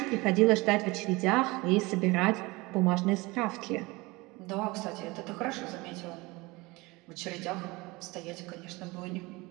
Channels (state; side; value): quieter; left; 23.2 dB